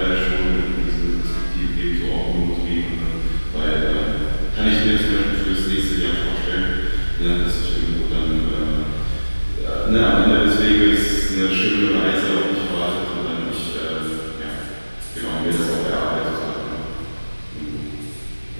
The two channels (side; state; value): both; inverted; correlation -1.00